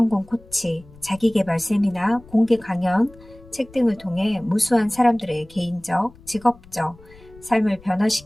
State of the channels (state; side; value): noise; left; rumble, 23 dB below the sound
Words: 코치, 자기계발 세미나, 공개 강연, 책 등을 통해 무수한 사람들의 개인적, 직업적 삶을